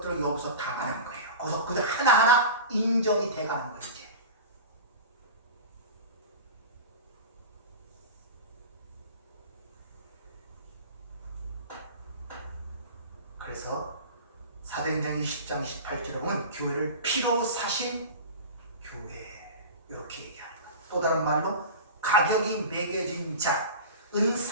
여기서 당하는 거예요. 거기서 그들 하나하나 인정이 돼가는 거예요. 이제 그래서 사도행전 20장 28절에 보면 교회를 피로 사신 교회 이렇게 얘기하는 거예요. 또 다른 말로 가격이 매겨진 자 은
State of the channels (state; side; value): inverted; both; correlation -0.31